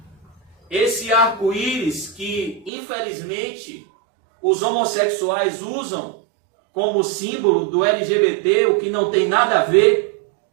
Esse arco-íris que, infelizmente, os homossexuais usam como símbolo do LGBT, o que não tem nada a ver.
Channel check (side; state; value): left; drops out; at 2.7 s